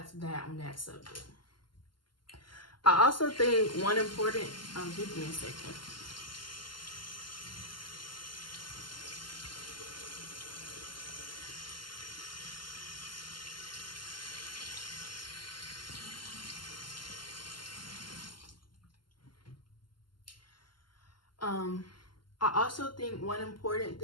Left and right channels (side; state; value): right; late; 0.71 ms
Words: that on that subject. I also think one important, give me a second. I also think one important